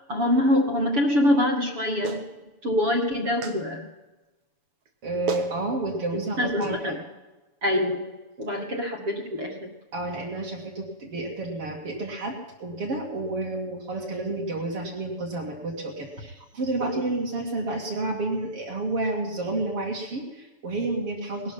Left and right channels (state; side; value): late; left; 7.1 ms